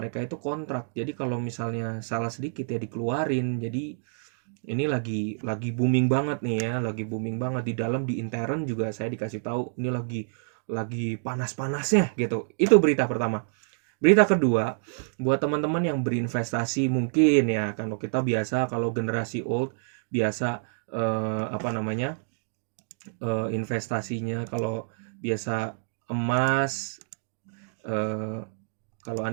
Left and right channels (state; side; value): silent; left; digital silence